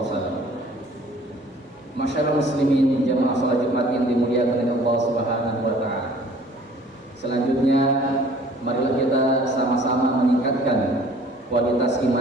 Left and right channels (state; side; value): normal; both; correlation 0.52